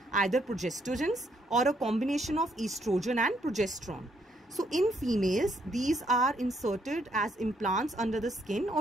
either progestogens or a combination of estrogen and progesterone. So in females, these are inserted as implants under the skin,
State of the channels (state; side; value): normal; both; correlation 0.71